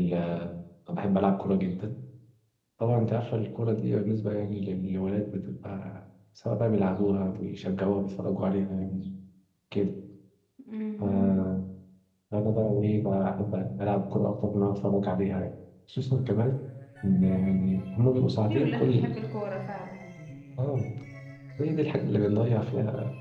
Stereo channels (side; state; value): both; identical; correlation 1.00